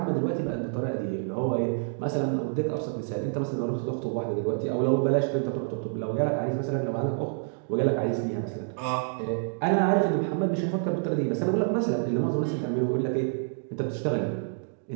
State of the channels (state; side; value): silent; left; digital silence